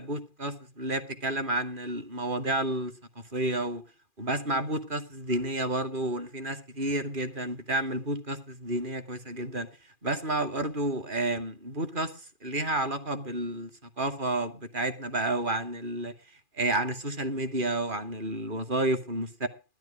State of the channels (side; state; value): left; late; 2.4 ms